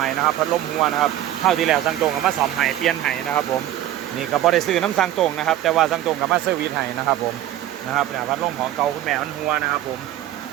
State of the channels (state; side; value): quieter; left; 12.9 dB